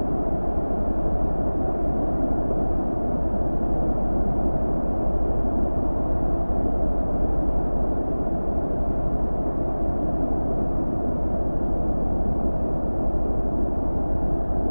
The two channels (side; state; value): both; inverted; correlation -1.00